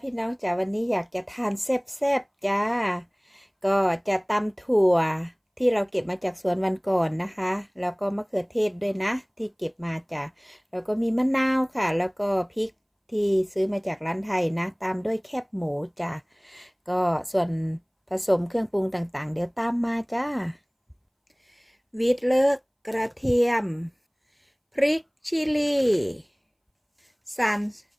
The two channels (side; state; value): both; identical; correlation 1.00